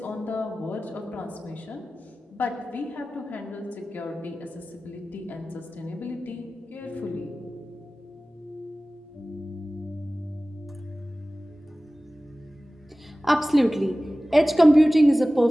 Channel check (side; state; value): both; normal; correlation 0.97